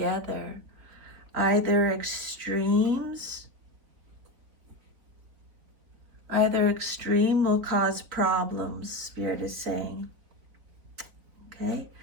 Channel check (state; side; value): late; left; 4.1 ms